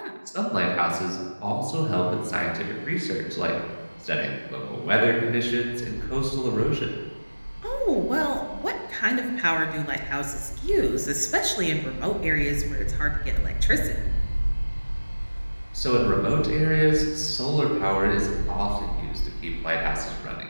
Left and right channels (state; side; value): inverted; both; correlation -1.00